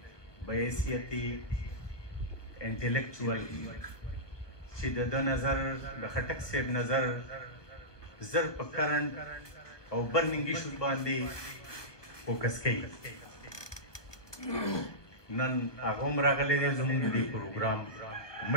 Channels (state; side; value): late; right; 1.1 ms